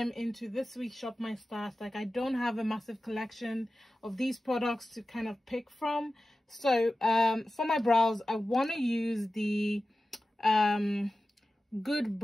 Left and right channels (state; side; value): normal; both; correlation 0.95